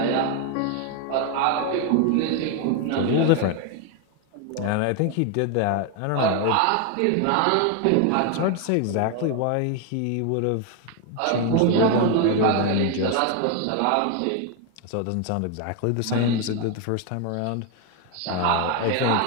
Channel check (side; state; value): both; different; correlation 0.01